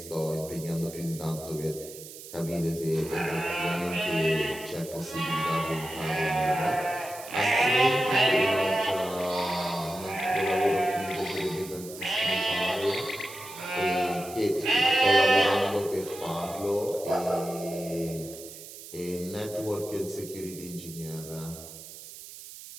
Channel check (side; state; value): right; noise; hiss, 14 dB below the sound